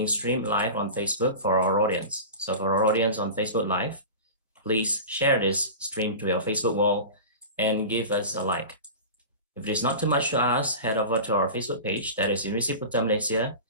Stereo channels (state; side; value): inverted; both; correlation -0.31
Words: streamed live on Facebook for our audience. So for our audience on Facebook Live, please share this stream to your Facebook wall and give us a like. If it is not too much to ask, head over to our Facebook page, that is University Putra Malaysia,